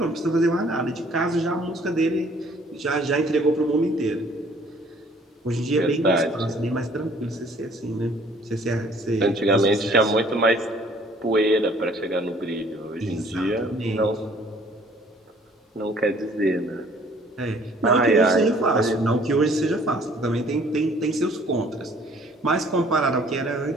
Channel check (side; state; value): both; normal; correlation 0.57